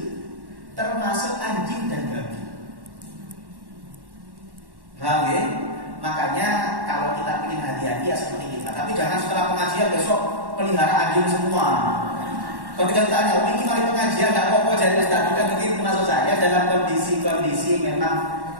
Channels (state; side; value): late; left; 1.1 ms